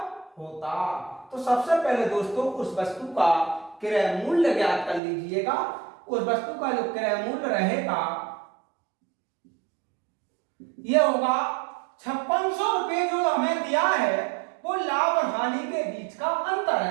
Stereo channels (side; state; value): left; drops out; at 5.0 s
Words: होता। तो सबसे पहले दोस्तों उस वस्तु का क्रय मूल्य ज्ञात कर लीजिएगा। उस वस्तु का जो क्रय मूल्य रहेगा यह होगा 5600 रुपए, जो हमें दिया है वो लाभ और हानि के बीच का अंतर